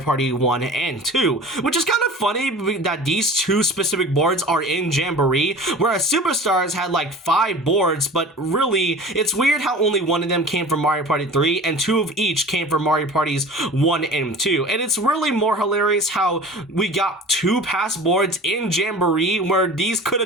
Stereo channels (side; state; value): both; normal; correlation 0.40